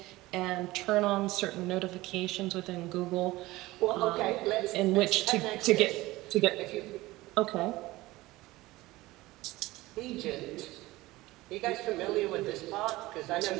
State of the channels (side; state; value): left; quieter; 19.0 dB